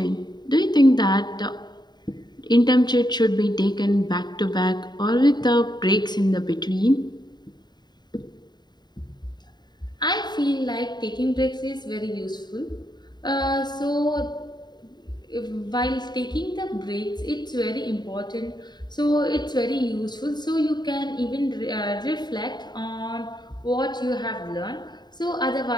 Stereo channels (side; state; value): right; late; 0.21 ms